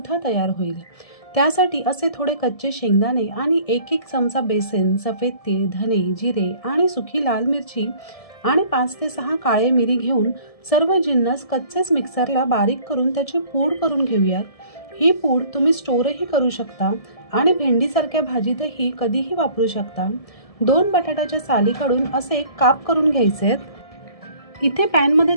तयार होईल. त्यासाठी असे थोडे कच्चे शेंगदाणे आणि एक एक चमचा बेसन, सफेद तीळ, धने, जिरे आणि सुकी लाल मिरची आणि 5 ते 6 काळे मिरी घेऊन सर्व जिन्नस कच्चेच मिक्सरला बारीक करून त्याची पूड करून घेऊयात. ही पूड तुम्ही स्टोरही करू शकता आणि भेंडीसारख्या भाजीतही कधीही वापरू शकता. 2 बटाट्याच्या साली काढून असे काप करून घ्यायचे. इथे पॅनमध्ये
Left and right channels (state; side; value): late; right; 1.7 ms